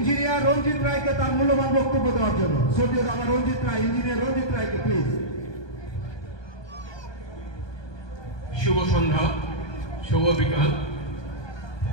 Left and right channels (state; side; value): late; right; 1.2 ms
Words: রঞ্জিত রায়কে তার মূল্যবান বক্তব্য দেওয়ার জন্য। শ্রদ্ধেয় দাদা রঞ্জিত রায়, ইঞ্জিনিয়ার রঞ্জিত রায়কে প্লিজ। শুভ সন্ধ্যা, শুভ বিকাল।